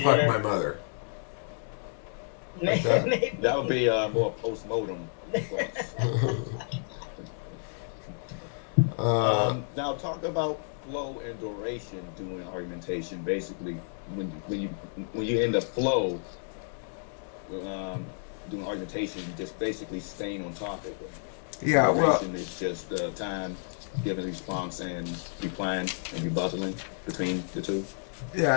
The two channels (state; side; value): silent; right; 57 dB below the other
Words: whatever. my mother. Maybe. That would be more post-mortem. Now talk about flow and duration doing argumentation. Basically, when you end the flow doing argumentation, just basically staying on topic. Yeah, well, duration is just time giving response and replying and rebuttaling between the two.